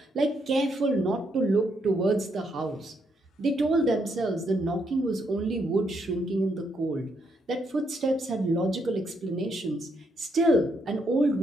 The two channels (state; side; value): normal; both; correlation 0.76